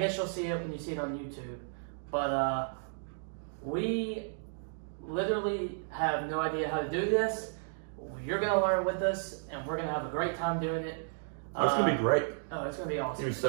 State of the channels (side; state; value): left; silent; digital silence